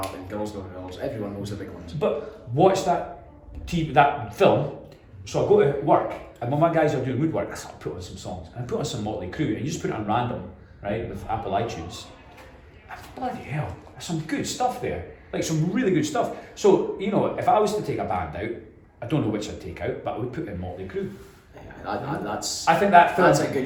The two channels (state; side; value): identical; both; correlation 1.00